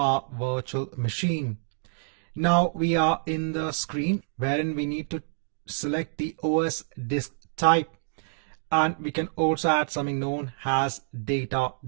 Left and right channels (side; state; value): left; silent; digital silence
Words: virtual machine. Now we are in the screen wherein we need to select the OS disk type, and we can also add something known as data